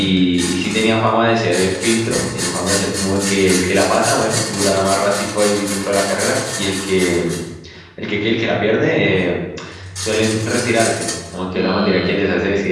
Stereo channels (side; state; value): both; identical; correlation 1.00